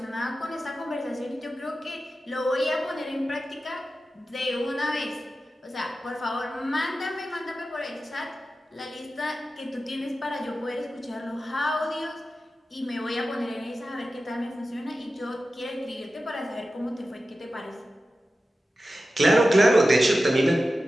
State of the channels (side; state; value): both; normal; correlation 0.93